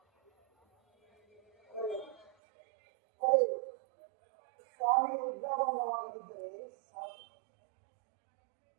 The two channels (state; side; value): drops out; left; at 2.3 s